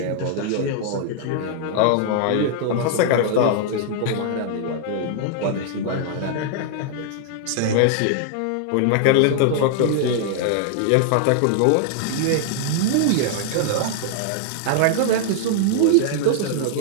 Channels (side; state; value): both; different; correlation -0.01